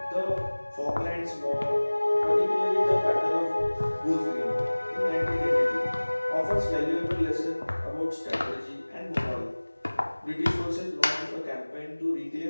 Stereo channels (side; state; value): both; inverted; correlation -1.00